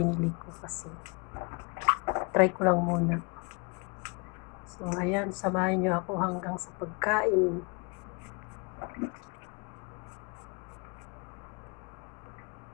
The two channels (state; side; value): quieter; right; 31.8 dB